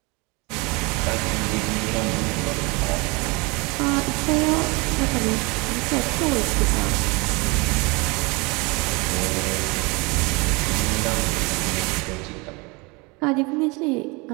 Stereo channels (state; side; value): quieter; left; 27.2 dB